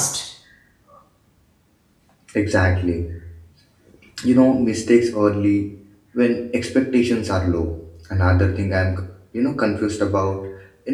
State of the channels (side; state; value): both; identical; correlation 1.00